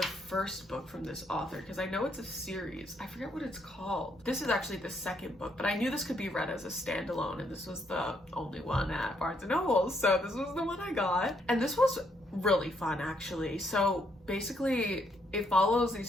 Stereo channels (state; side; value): normal; both; correlation 0.73